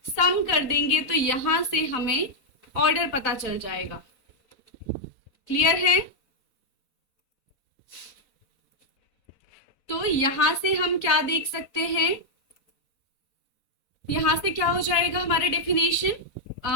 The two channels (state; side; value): late; right; 4.0 ms